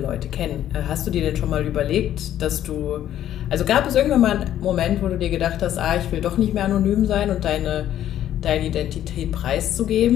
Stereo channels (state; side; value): quieter; right; 11.6 dB